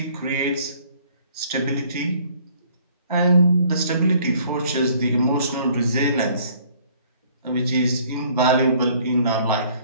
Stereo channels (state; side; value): inverted; both; correlation -0.58